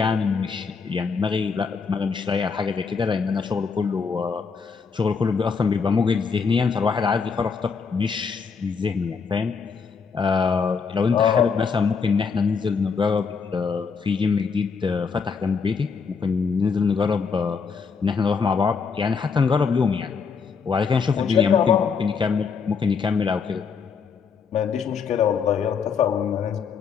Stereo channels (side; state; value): right; quieter; 5.6 dB